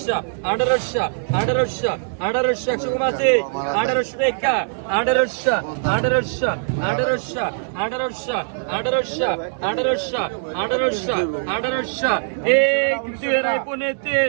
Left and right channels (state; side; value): silent; left; digital silence